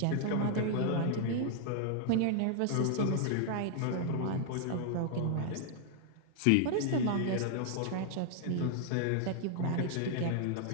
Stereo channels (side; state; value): both; different; correlation 0.00